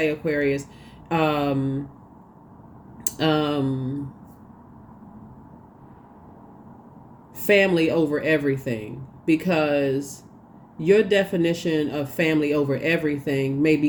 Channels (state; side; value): identical; both; correlation 1.00